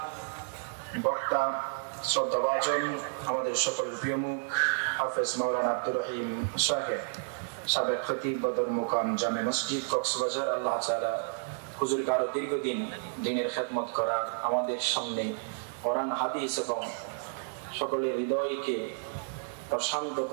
বক্তা শ্রদ্ধাভাজন আমাদের সকলের প্রিয় মুখ হাফেজ মাওলানা আব্দুর রহিম সাহেব, সাবেক খতিব বদর মুকাম জামে মসজিদ কক্সবাজার, আল্লাহ তাআলা হুজুরকে আরো দীর্ঘদিন দ্বীনের খেদমত করার, আমাদের সামনে কোরআন হাদিস এবং সকলের হৃদয়কে প্রশান্ত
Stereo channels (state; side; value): silent; left; digital silence